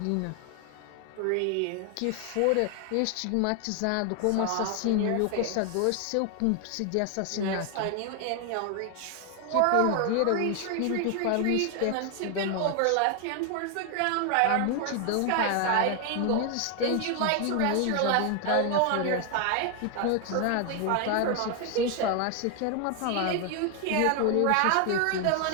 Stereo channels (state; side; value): different; both; correlation 0.00